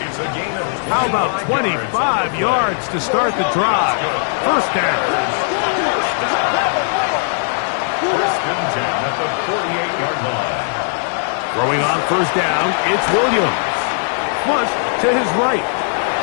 a gain of How about 25 yards to start the drive? 1st down. 1st and 10 at the 48-yard line. Throwing on 1st down, it's Williams. Flush to his right.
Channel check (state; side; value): silent; right; 67 dB below the other